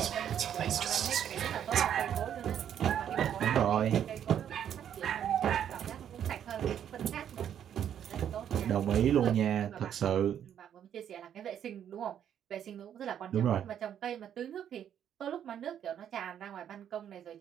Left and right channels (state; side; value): quieter; left; 9.5 dB